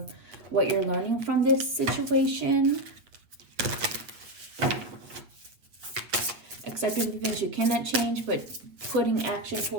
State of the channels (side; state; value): left; late; 8.2 ms